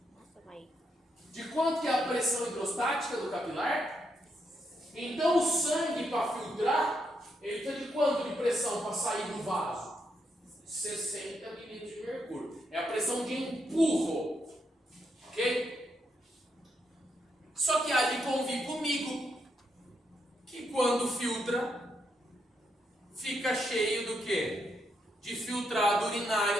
Nossa, vai. De quanto que é a pressão hidrostática do capilar? Então o sangue para filtrar, ele está de quanto de pressão para sair do vaso? 60 milímetros de mercúrio. É a pressão de empurro. Ok? Só que há de convir comigo que quando filtra, fica cheio do quê? De filtrado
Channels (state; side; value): normal; both; correlation 0.79